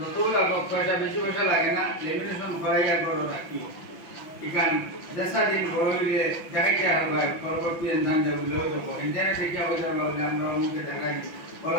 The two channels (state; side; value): late; right; 5.7 ms